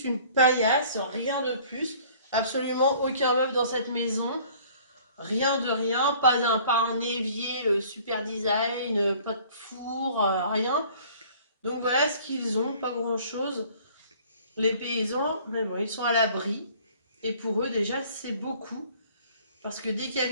une paillasse, rien de plus. Absolument aucun meuble dans cette maison. Rien de rien, pas un évier super design, pas de four, rien. Donc voilà ce qu'ils ont, pas grand-chose. Les paysans, mais bon, ils sont à l'abri. Et pour eux, déjà, c'est beaucoup. Parce que dès qu'il y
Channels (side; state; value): both; inverted; correlation -0.52